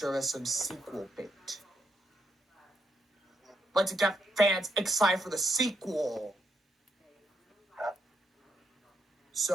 as some sequel bait. But to get fans excited for the sequel.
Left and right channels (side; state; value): both; normal; correlation 0.79